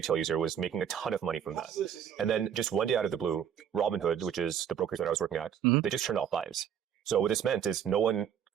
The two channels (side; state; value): left; quieter; 8.8 dB